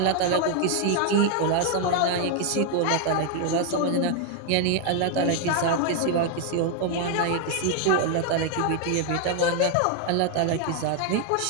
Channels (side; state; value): both; different; correlation 0.00